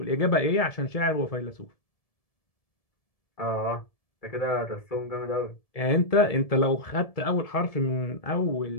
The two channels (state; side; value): late; right; 1.7 ms